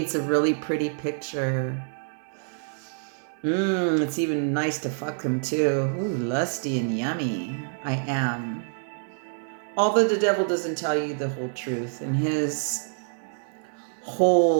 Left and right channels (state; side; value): silent; left; 60 dB below the other